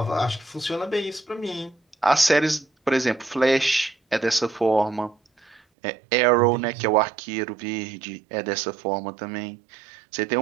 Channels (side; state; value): left; drops out; at 5.6 s